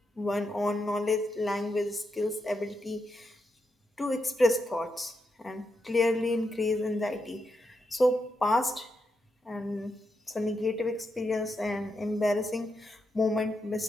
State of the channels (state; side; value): normal; both; correlation 0.84